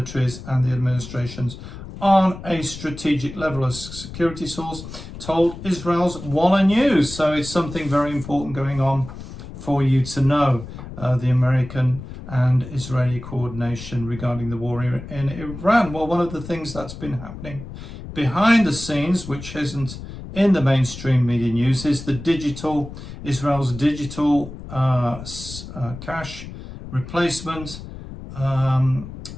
and the administrations on a strategic level, a security source told Israel's Walla News. So it's something very important going on for you to know, the American and Israeli coordination regarding the war in Iran. Well, one of the things that's been happening behind the scenes, which isn't in the mainstream media news, is Israel's digital cash replacement.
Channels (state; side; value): noise; left; rumble, 12 dB below the sound